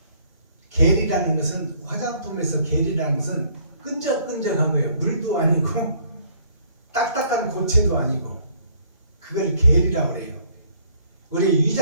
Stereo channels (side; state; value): both; inverted; correlation -0.61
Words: 겔이라는 것은 화장품에서 겔이라는 것은 끈적끈적한 거예요. 물도 아니고 딱딱한 고체도 아니고 그걸 겔이라고 그래요. 우리